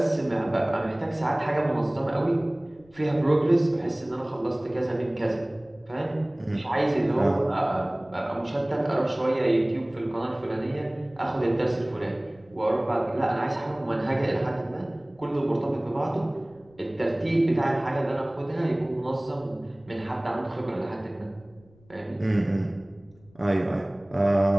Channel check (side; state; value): left; noise; rumble, 28 dB below the sound